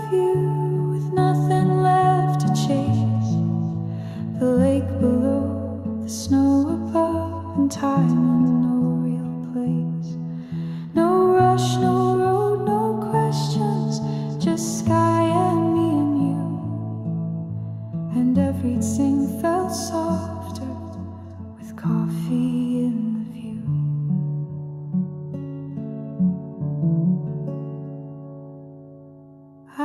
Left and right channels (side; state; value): both; identical; correlation 1.00